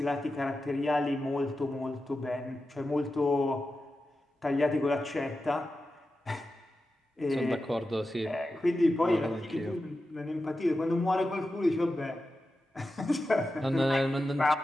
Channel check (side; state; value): both; normal; correlation 0.92